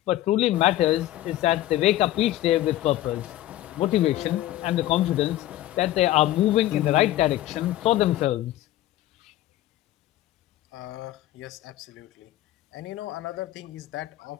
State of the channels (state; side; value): quieter; right; 14.6 dB